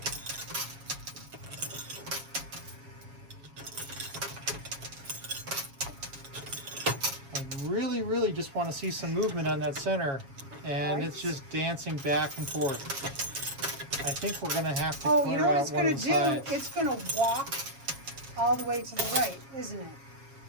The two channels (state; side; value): late; left; 7.3 ms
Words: I really just want to see some movement on that center, and Right. it's just dancing back and forth. I think we're gonna have to Oh, clear you know what out it's one going of to the do? sides. It's going to walk all the way to the right, isn't it?